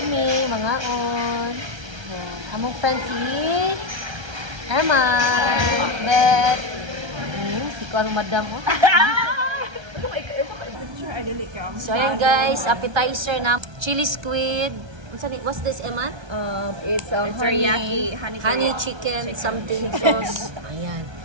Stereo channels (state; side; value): late; left; 1.3 ms